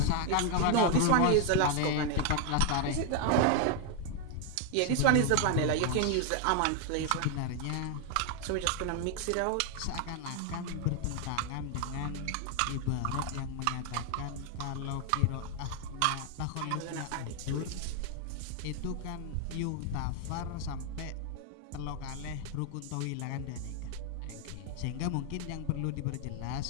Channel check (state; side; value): different; both; correlation 0.00